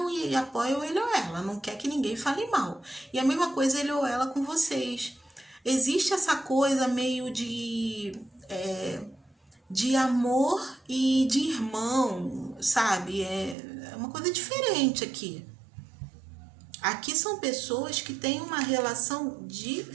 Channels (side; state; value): left; drops out; at 13.6 s